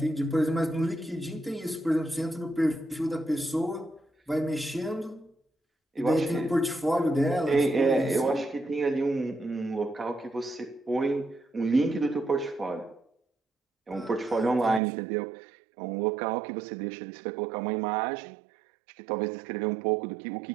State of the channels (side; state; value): left; drops out; at 14.8 s